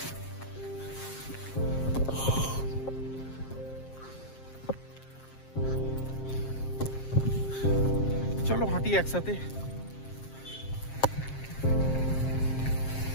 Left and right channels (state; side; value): late; right; 7.5 ms